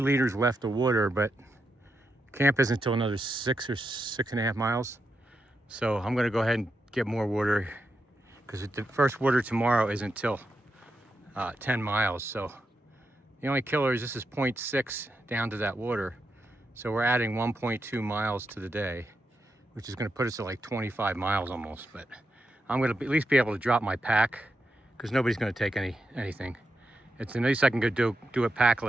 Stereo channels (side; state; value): both; normal; correlation 0.85